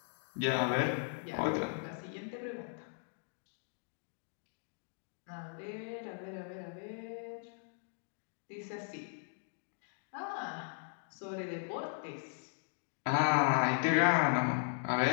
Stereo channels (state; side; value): silent; right; 53 dB below the other